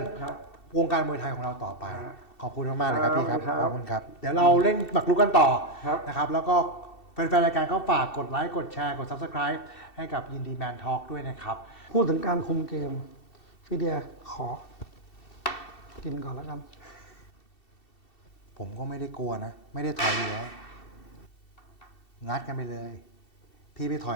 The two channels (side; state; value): right; late; 2.7 ms